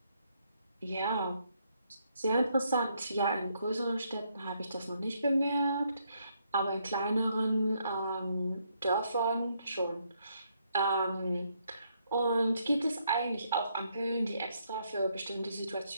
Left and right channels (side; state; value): both; inverted; correlation -0.74